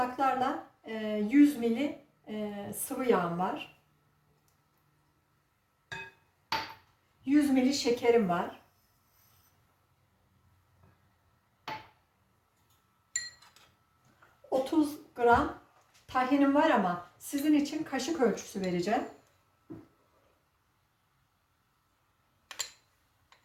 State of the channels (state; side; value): identical; both; correlation 1.00